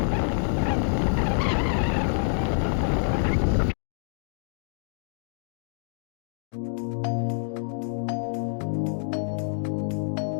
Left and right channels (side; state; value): right; silent; digital silence